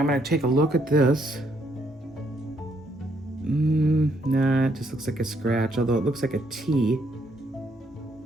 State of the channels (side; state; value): both; normal; correlation 0.72